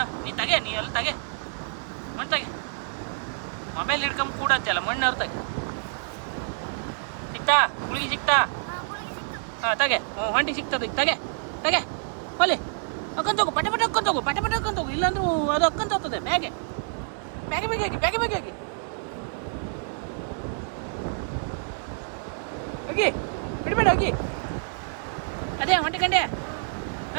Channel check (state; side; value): silent; left; digital silence